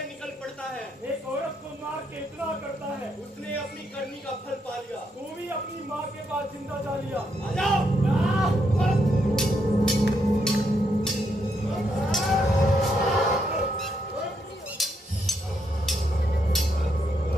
निकल पड़ता है? एक औरत को मार के इतना करता है, उसने अपनी करनी का फल पा लिया। तू भी अपनी माँ के पास जिंदा जा लिया। आ जाओ।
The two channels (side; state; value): both; normal; correlation 0.78